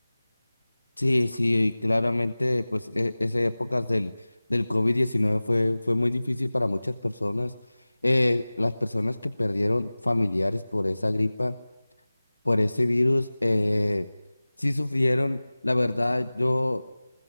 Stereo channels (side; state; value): both; inverted; correlation -0.99